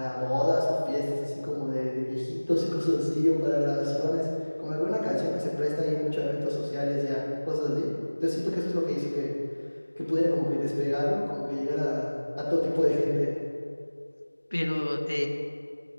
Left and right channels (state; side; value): inverted; both; correlation -1.00